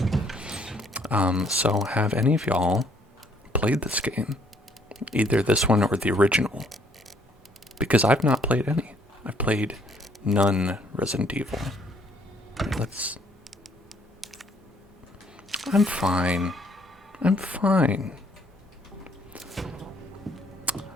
So have any of y'all played this game? Either this one or the original? Because I've not played any. I've played none Resident Evil. Let's... I'm fine. I'm fine.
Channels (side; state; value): both; normal; correlation 0.65